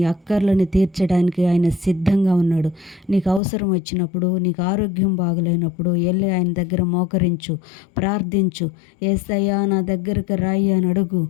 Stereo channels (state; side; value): drops out; right; at 3.4 s